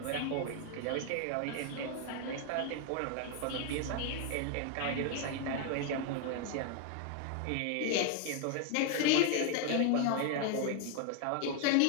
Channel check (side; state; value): both; different; correlation 0.01